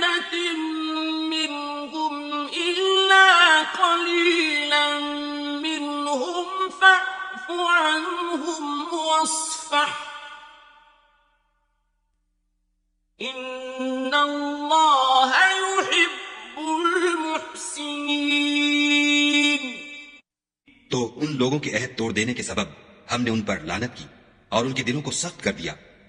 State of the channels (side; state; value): both; identical; correlation 1.00